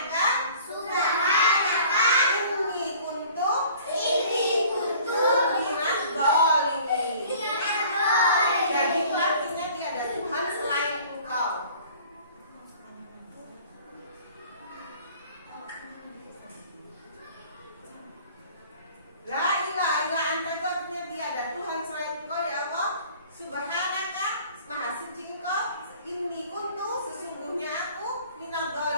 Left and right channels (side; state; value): both; inverted; correlation -0.50